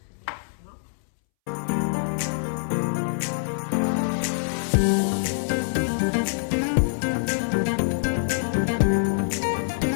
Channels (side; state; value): right; silent; 62 dB below the other